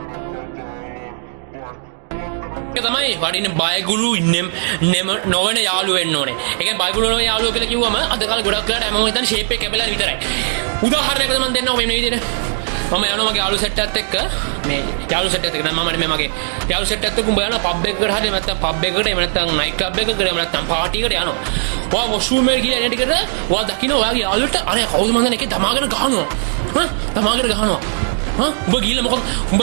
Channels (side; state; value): left; silent; digital silence